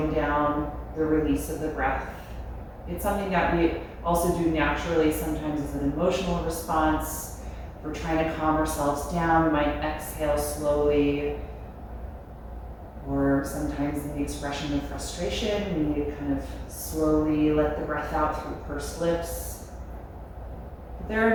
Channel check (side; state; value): both; identical; correlation 1.00